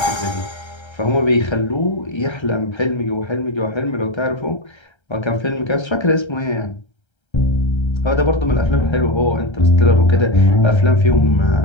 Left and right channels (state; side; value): late; right; 1.3 ms